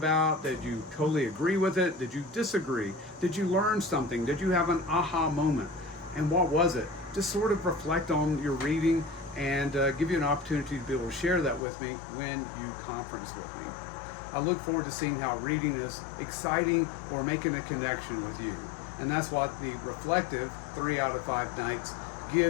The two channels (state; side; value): drops out; right; at 11.6 s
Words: Did you totally agree with it? Did you disagree? Did you learn something? Did you have an aha moment? And what was it? Just sort of reflect on your reading and give you an opportunity to be able to share that with me when you conference with me. I look forward to seeing how reading is exciting or making a connection with you. And that's what the reflective 3 out of 5 nights